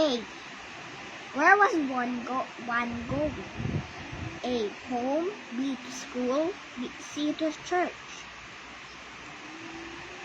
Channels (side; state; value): both; identical; correlation 1.00